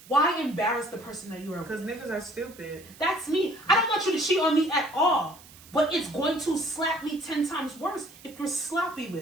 Why embarrass the person that you are Because with? niggas are stupid. That's me. I don't want you to cheat on me at all. But it's going to slap me 10 times worse if you're sloppy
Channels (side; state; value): right; noise; hiss, 21 dB below the sound